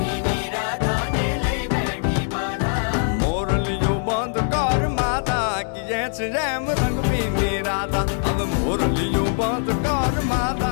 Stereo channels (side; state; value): right; silent; 64 dB below the other